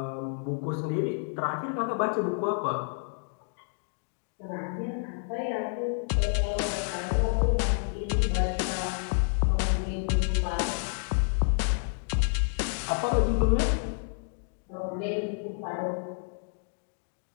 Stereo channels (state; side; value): silent; right; digital silence